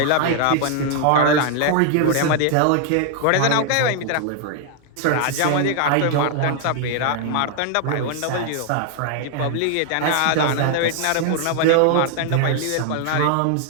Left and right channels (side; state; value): both; different; correlation 0.00